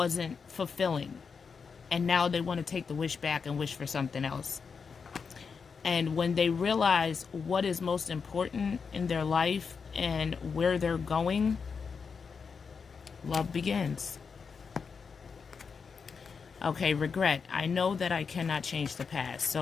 fulfilling, and now they want to take the wish back and wish for something else. And when they realize what is most important in their life and where they're going, love begins. Okay, regret. I know that I cannot change the past.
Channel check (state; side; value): quieter; right; 5.6 dB